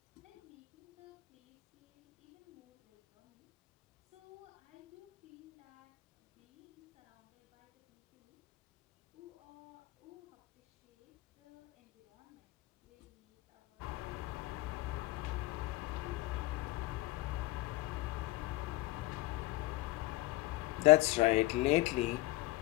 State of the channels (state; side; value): quieter; right; 19.4 dB